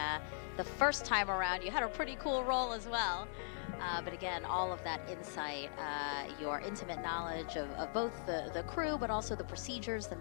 the first time around you had a pretty cool role as well. But again, all of that insight, your intimate knowledge of both the crew, but also the procedures, the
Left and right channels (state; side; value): silent; right; digital silence